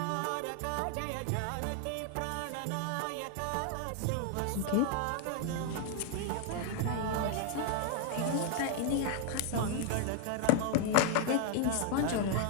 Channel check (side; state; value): both; different; correlation 0.00